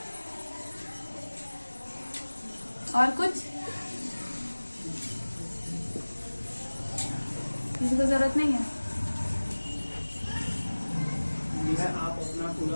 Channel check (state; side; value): inverted; both; correlation -1.00